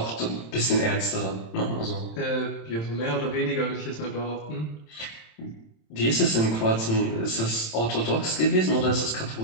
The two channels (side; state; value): right; late; 27 ms